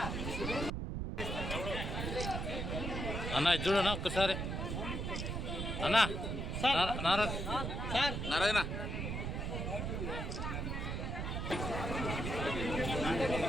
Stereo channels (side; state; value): right; noise; rumble, 2 dB below the sound